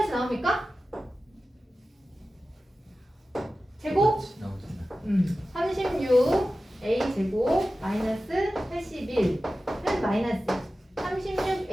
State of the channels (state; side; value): normal; both; correlation 0.94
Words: 나옵니까? 제곱? 36 a 제곱 마이너스 81은 마이너스 36